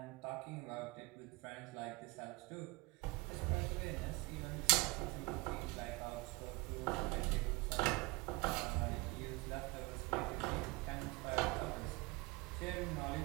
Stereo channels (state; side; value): quieter; left; 24.2 dB